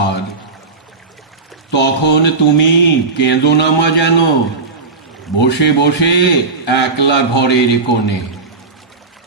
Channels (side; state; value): left; quieter; 4.0 dB